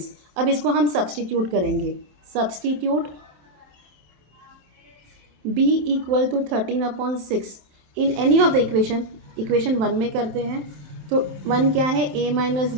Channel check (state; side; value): late; left; 27 ms